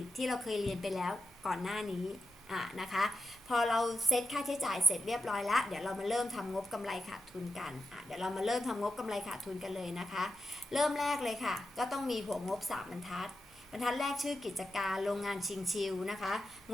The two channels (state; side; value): normal; both; correlation 0.89